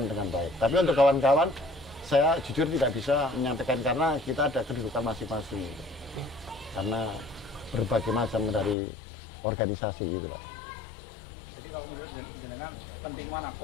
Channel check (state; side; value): drops out; right; at 8.8 s